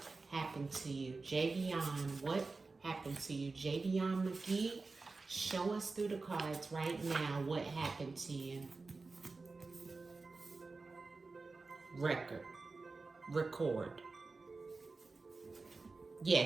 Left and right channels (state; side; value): quieter; left; 3.9 dB